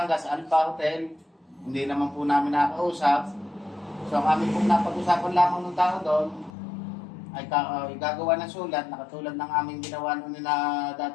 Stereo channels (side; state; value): right; drops out; at 6.5 s